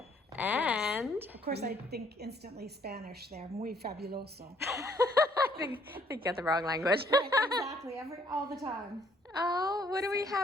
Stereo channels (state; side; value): normal; both; correlation 0.65